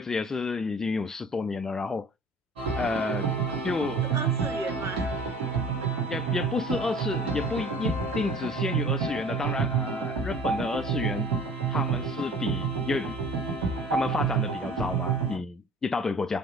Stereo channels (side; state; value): both; normal; correlation 0.47